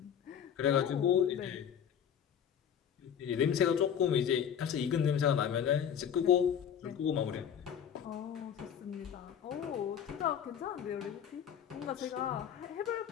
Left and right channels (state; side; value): quieter; right; 8.6 dB